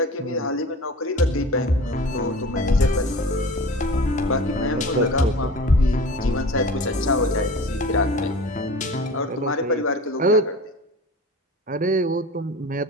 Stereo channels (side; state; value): both; normal; correlation 0.38